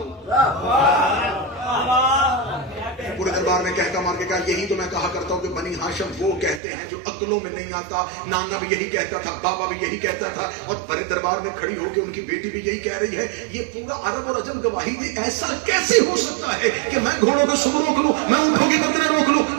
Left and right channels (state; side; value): drops out; left; at 6.6 s